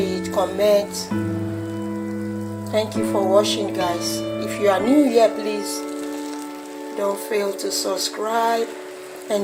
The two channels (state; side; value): identical; both; correlation 1.00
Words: comment. Thank you for watching, guys. If you are new here, please don't fail to subscribe